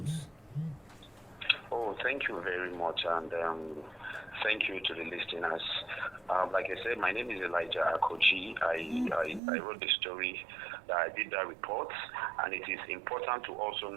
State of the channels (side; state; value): left; drops out; at 9.4 s